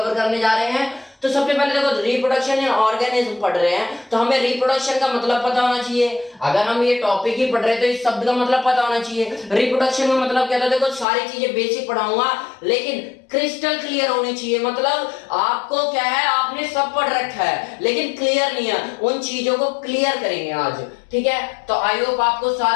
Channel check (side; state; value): right; drops out; at 11.1 s